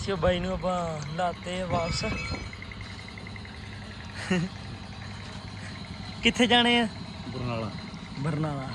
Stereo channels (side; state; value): both; identical; correlation 1.00